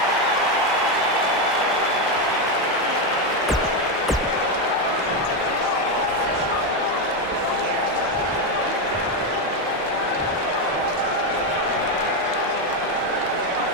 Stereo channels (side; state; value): both; normal; correlation 0.08